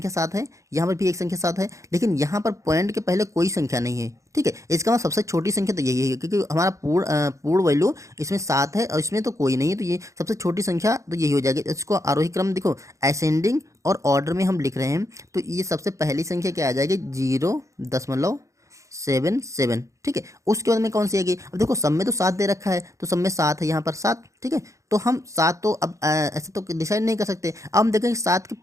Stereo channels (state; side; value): late; left; 0.15 ms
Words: 7 है, यहाँ पर भी एक संख्या 7 है, लेकिन यहाँ पर पॉइंट के पहले कोई संख्या नहीं है। ठीक है, इसका मतलब सबसे छोटी संख्या तो यही है, क्योंकि हमारा पूर्ण वैल्यू इसमें 7 है और इसमें तो कोई नहीं है, तो ये सबसे छोटी संख्या तो यही हो जाएगी। इसको आरोही क्रम देखो असेंडिंग और ऑर्डर में हम लिख रहे हैं, तो ये सबसे पहली संख्या क्या आ जाएगी 0.77। ठीक है, उसके बाद में कौन सी आएगी। अब देखो सब में तो 7 दे रखा है, तो सब में 7 है, यहाँ पर 7। ठीक है, तो हम 7 तो अब ऐसे तो डिसाइड नहीं कर सकते। अब हम देखेंगे 7 के